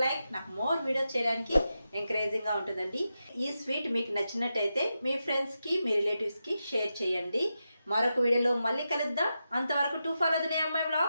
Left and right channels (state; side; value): inverted; both; correlation -0.89